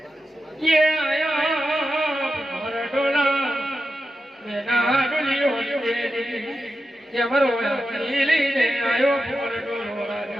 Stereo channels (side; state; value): both; normal; correlation 0.89